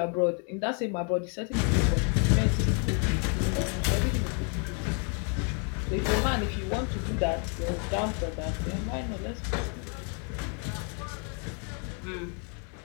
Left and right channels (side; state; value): right; quieter; 39.8 dB